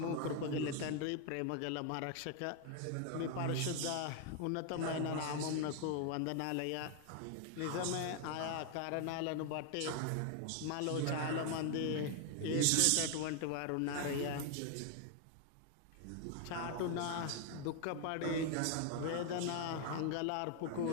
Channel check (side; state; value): both; different; correlation 0.00